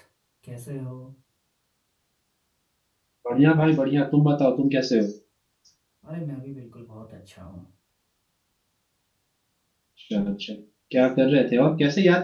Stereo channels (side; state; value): both; identical; correlation 1.00